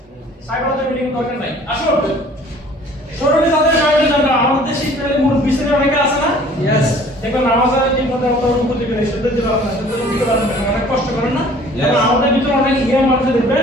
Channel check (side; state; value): both; normal; correlation 0.52